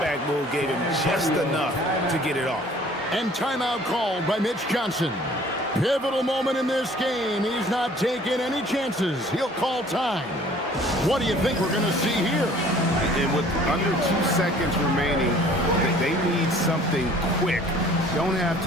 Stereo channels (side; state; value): both; normal; correlation 0.53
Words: move gave him just enough to get it off. And timeout called by Mitch Johnson. Pivotal moment in this game. He's not taking any chances. He'll call time. What do you think we're going to see here? And with under 2 seconds remaining, they need something quick. Don't have